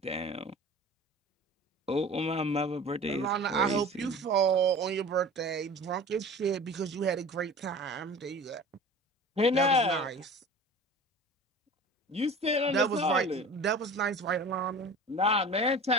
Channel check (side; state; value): both; normal; correlation 0.38